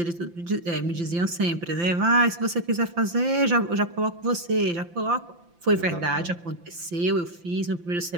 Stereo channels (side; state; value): left; late; 5.8 ms